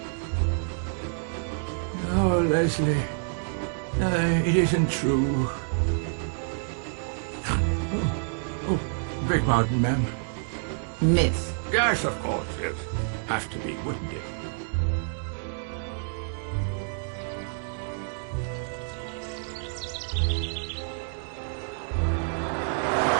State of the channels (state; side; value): silent; left; digital silence